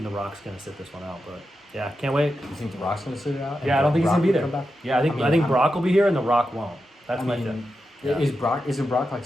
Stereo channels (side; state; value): both; normal; correlation 0.89